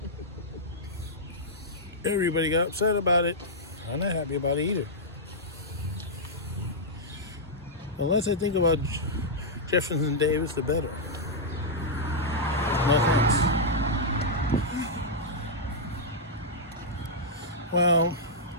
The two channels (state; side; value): normal; both; correlation -0.08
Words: Everybody got upset about it. I'm not happy about it either. The less I think about Jefferson Davis, the better. No offense. Well,